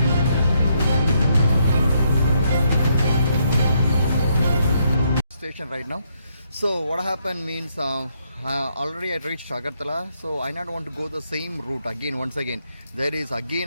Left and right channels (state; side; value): inverted; both; correlation -0.75